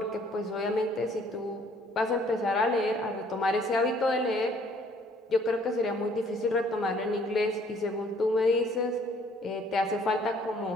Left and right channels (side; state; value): both; normal; correlation 0.60